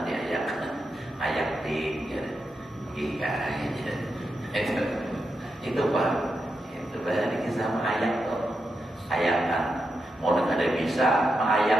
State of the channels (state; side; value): normal; both; correlation 0.86